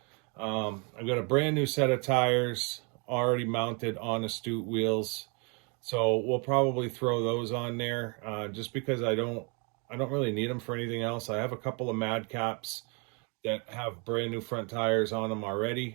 I've got a brand new set of tires already mounted on Astute wheels. So we'll probably throw those on there, just because I don't really need them for anything else. I have a couple of Madcaps that have brand new front tires on them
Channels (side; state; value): left; quieter; 33.8 dB